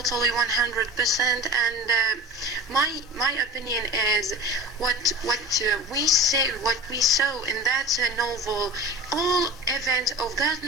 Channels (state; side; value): normal; both; correlation 0.33